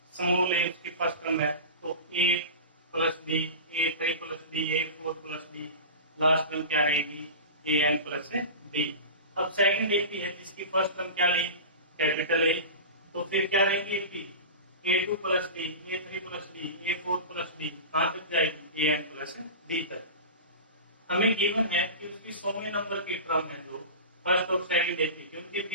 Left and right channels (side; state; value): both; inverted; correlation -0.30